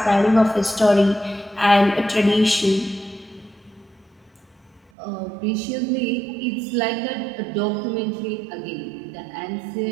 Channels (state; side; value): drops out; left; at 4.9 s